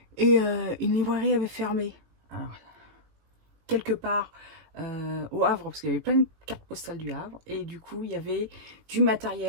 et une librairie avait fermé. Alors, quelque part au Havre, parce qu'il y avait plein de cartes postales du Havre, et du coup, il y avait du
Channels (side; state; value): left; late; 19 ms